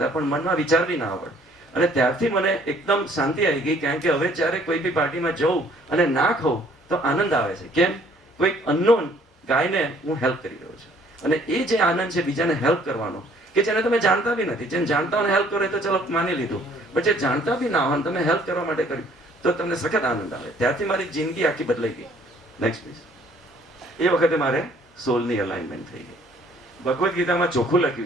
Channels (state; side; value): normal; both; correlation 0.60